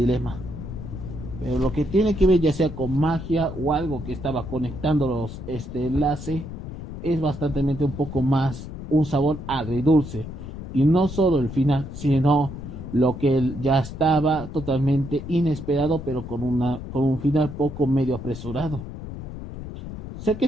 Pero lo que tiene que ver ya sea con magia o algo que estaba conectándolos este enlace es bastante un poco más un sabor agridulce. Y no solo el final, sino lo que ya estaba totalmente inesperado, pero con un final poco medio apresurado. Sé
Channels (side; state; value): left; noise; rumble, 10 dB below the sound